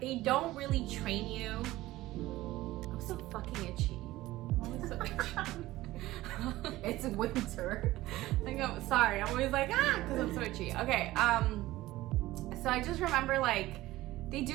they don't really train you. I'm so fucking itchy. I'm always so itchy. It's winter. Like, I'm sorry, I'm always like, because I'm so itchy. Okay, so I just remember, like, they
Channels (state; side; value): quieter; left; 17.1 dB